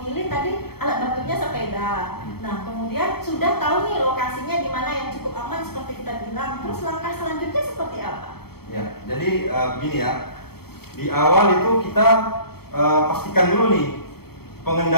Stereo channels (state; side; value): late; right; 0.96 ms